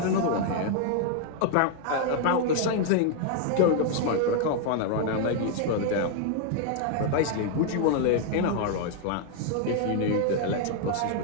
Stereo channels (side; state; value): both; different; correlation 0.00